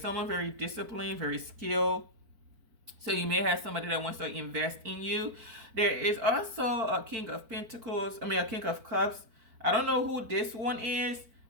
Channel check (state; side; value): late; left; 4.5 ms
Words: very disciplined, very skilled. So you may have somebody that wants to invest in you. There is also a King of Pentacles. A King of Cups. I don't know who this one is,